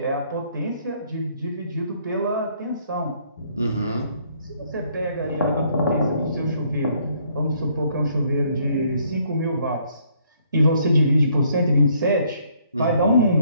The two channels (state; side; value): inverted; both; correlation -0.66